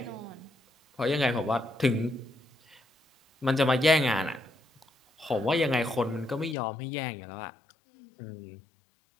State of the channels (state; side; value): drops out; right; at 6.6 s